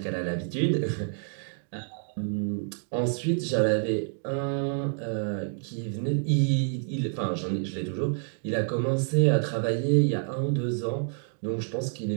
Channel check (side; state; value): left; silent; 59 dB below the other